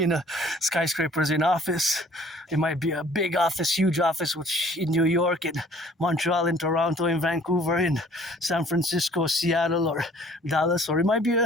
in the skyscrapers in office. It might be a big office, huge office, which in New York, in Montreal, in Toronto, in Vancouver, in San Francisco, Seattle, or Dallas. Or it might be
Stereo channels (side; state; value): both; normal; correlation 0.55